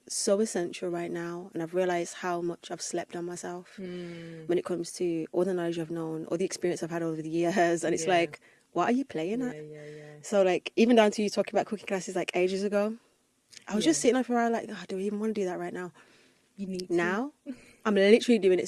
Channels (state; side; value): identical; both; correlation 1.00